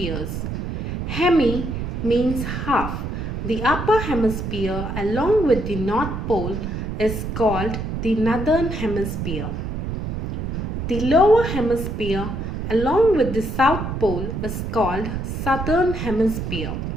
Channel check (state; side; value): noise; right; rumble, 4 dB below the sound